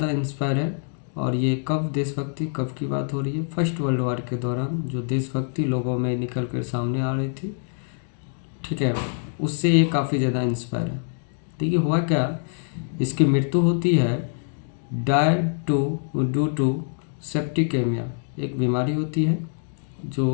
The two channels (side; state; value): right; silent; digital silence